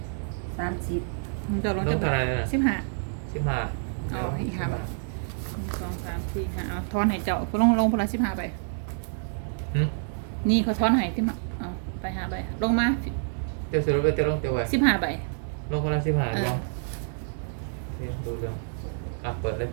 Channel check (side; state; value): left; silent; digital silence